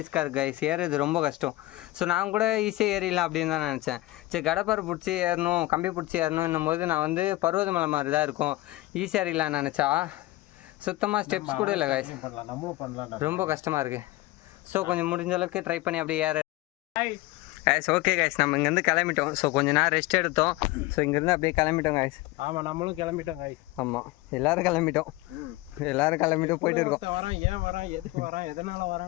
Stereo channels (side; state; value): right; quieter; 18.8 dB